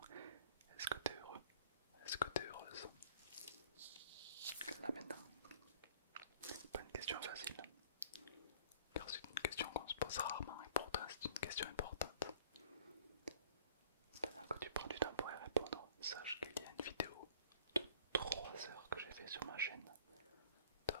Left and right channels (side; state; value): both; inverted; correlation -0.52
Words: Est-ce que tu es heureux? Est-ce que tu es heureuse? Là maintenant, pas une question facile, car c'est une question qu'on se pose rarement et pourtant c'est une question importante. Pendant que tu prends du temps pour y répondre, sache qu'il y a une vidéo de 3 heures que j'ai fait sur ma chaîne